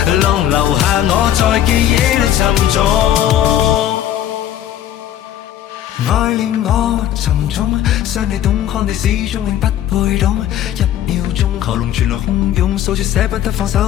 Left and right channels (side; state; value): right; quieter; 11.4 dB